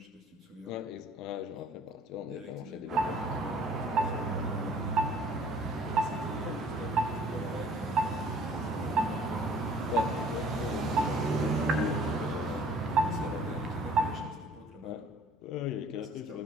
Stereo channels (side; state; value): both; normal; correlation 0.54